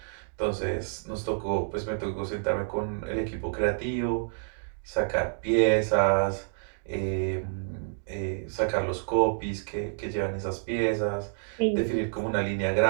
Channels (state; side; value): silent; left; digital silence